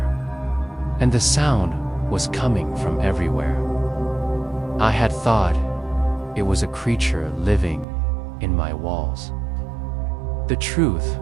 and the sound was coming from everywhere. I had thought it was a creature living in my walls. The truth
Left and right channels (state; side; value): drops out; left; at 7.9 s